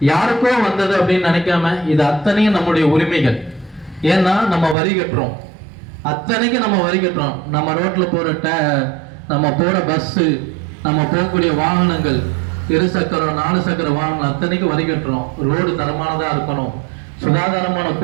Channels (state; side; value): drops out; left; at 4.8 s